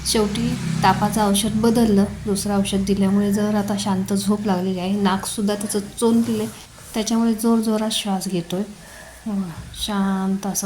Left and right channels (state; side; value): identical; both; correlation 1.00